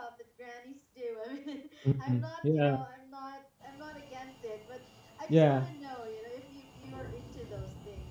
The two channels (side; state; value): both; identical; correlation 1.00